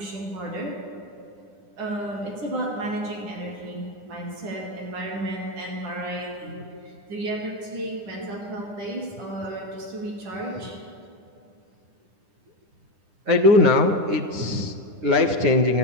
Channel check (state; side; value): late; left; 9.9 ms